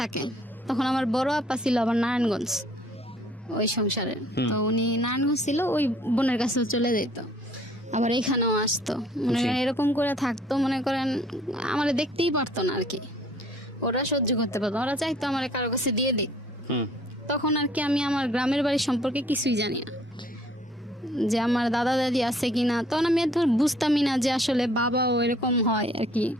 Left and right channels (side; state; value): both; normal; correlation 0.58